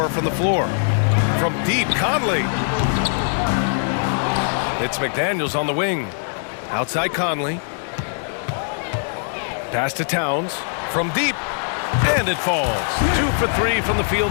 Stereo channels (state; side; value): silent; right; 62 dB below the other